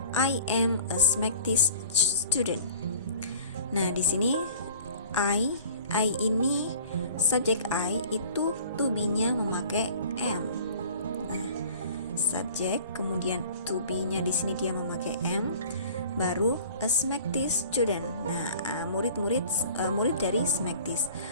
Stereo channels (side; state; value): both; inverted; correlation -0.45